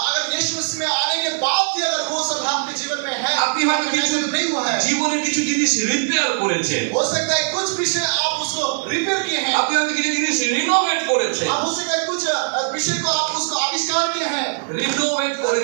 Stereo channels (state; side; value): silent; left; digital silence